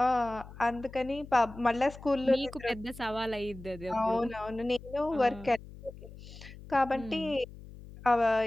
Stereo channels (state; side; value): noise; left; hum, 16 dB below the sound